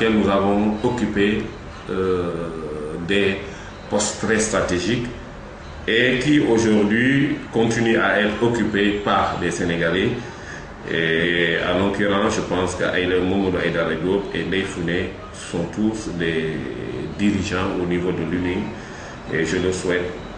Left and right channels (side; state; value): both; identical; correlation 1.00